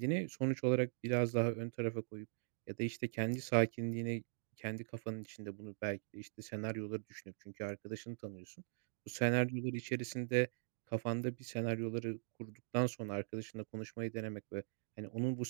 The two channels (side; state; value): left; silent; digital silence